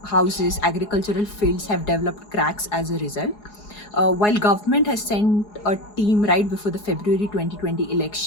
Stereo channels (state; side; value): late; right; 4.8 ms